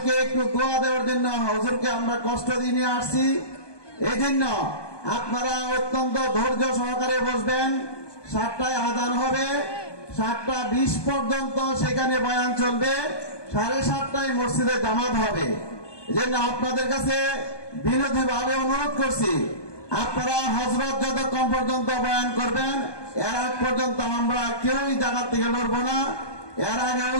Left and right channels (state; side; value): late; right; 1.2 ms